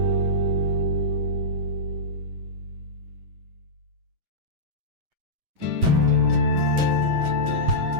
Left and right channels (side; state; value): left; late; 8.2 ms